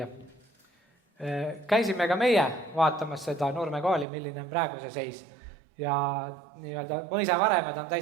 Käisime ka meie vaatamas seda Nurme kooli, milline on praegu see seis. Ja nii-öelda mõisavaremed on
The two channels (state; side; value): drops out; left; at 4.0 s